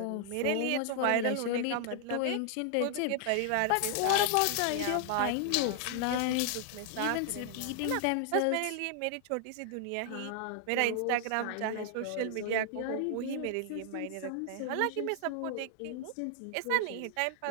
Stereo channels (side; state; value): both; different; correlation 0.00